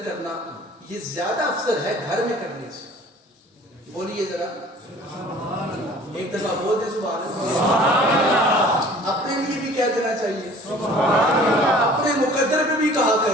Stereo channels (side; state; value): both; normal; correlation 0.49